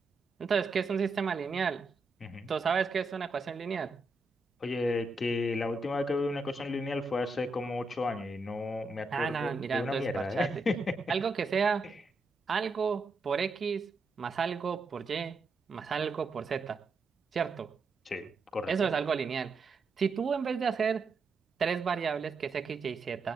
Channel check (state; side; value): quieter; left; 3.2 dB